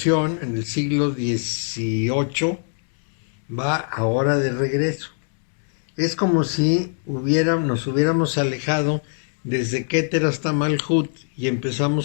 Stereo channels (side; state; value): right; silent; digital silence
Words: en el siglo XVIII va ahora de regreso. Es como si nos hubiéramos alejado desde Keter hasta Malhut y